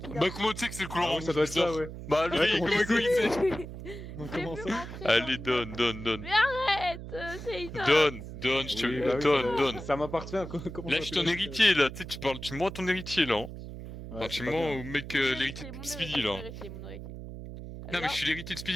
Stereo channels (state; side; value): noise; right; hum, 10 dB below the sound